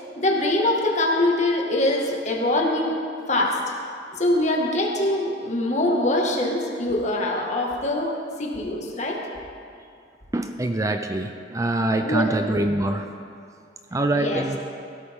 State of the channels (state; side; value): normal; both; correlation 0.38